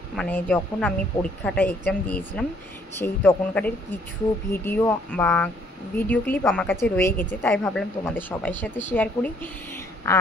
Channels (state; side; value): normal; both; correlation 0.64